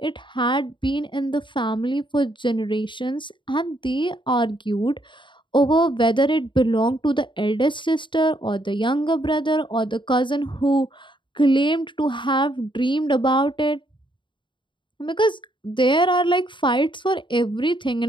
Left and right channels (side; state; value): right; late; 0.23 ms